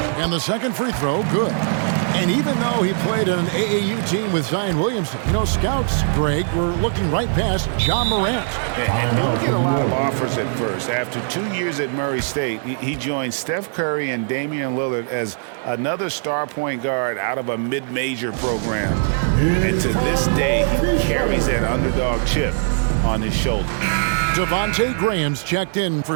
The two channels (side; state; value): left; silent; 63 dB below the other